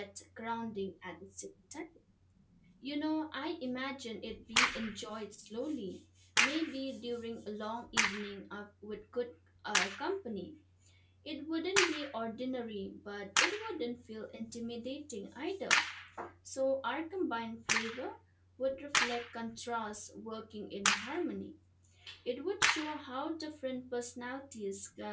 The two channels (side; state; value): both; identical; correlation 1.00